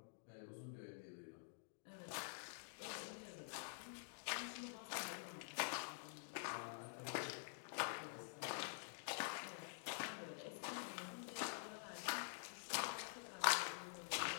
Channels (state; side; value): silent; right; digital silence